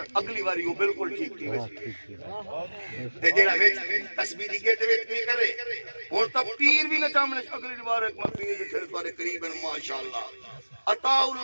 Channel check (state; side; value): inverted; both; correlation -1.00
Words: اگلی باری وہ بالکل ٹھیک تھی تے جڑا وچ تسبیح دی گیٹ وچ کی کرے ہن تا پیر بھی نہ چامنے اگلی بار ایک میں پیر دے پھر تواڈے قریب ہیں ماشاءاللہ عطا